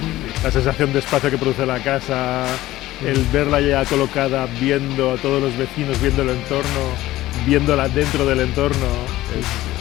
La sensación de espacio que produce la casa, el verla ya colocada, viendo a todos los vecinos, viendo el entorno, viéndola dentro del entorno,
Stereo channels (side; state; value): right; quieter; 16.1 dB